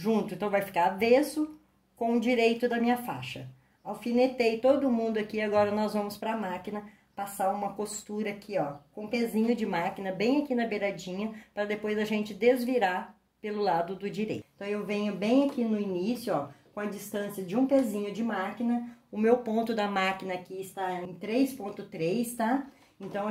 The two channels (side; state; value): both; identical; correlation 1.00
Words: Então, vai ficar avesso com o direito da minha faixa. Alfinetei todo mundo aqui, agora nós vamos para a máquina passar uma costura aqui, ó, com pezinho de máquina, bem aqui na beiradinha, para depois a gente desvirar pelo lado do direito. Então, eu venho bem aqui no início, ó, com a distância de um pezinho de máquina. O meu ponto da máquina aqui está em 3,3, tá? Então,